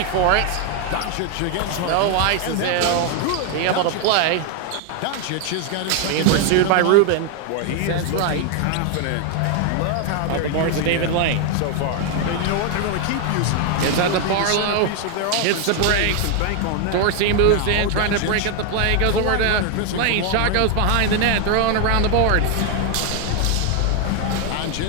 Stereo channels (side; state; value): both; different; correlation 0.01